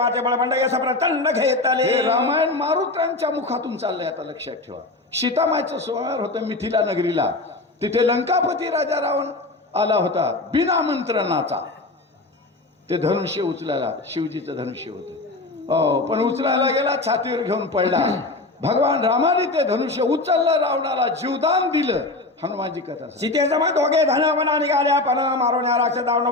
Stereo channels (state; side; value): quieter; right; 3.1 dB